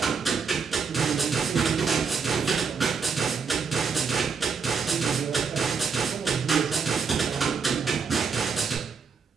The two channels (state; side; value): quieter; left; 5.6 dB